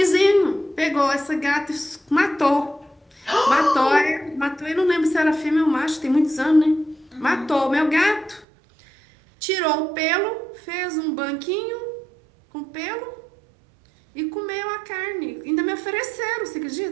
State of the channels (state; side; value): drops out; left; at 8.5 s